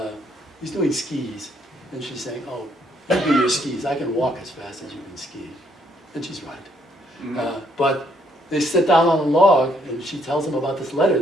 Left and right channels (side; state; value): both; normal; correlation 0.70